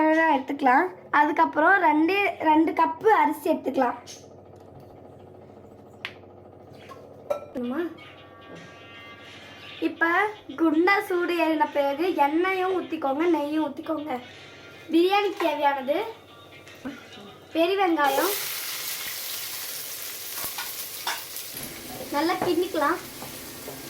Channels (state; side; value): identical; both; correlation 1.00